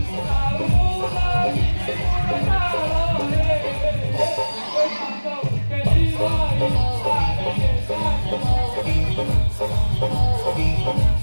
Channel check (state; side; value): inverted; both; correlation -1.00